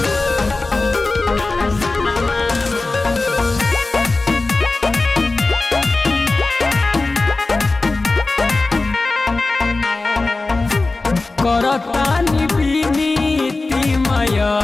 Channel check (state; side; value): quieter; right; 3.4 dB